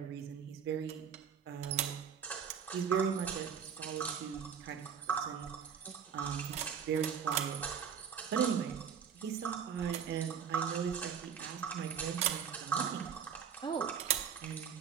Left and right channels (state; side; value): quieter; left; 7.5 dB